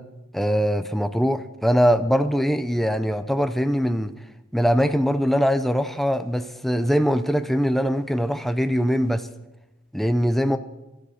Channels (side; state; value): both; normal; correlation 0.93